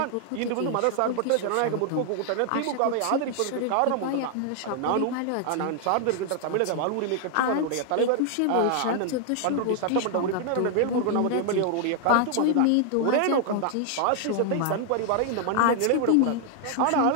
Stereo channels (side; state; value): both; different; correlation 0.00